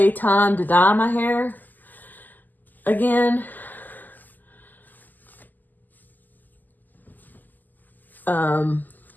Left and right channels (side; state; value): right; late; 0.085 ms